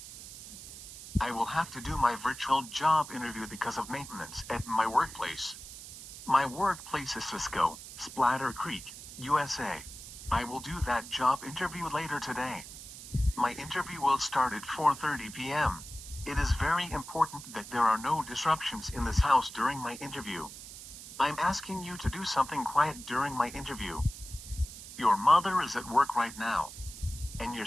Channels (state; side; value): noise; right; hiss, 13 dB below the sound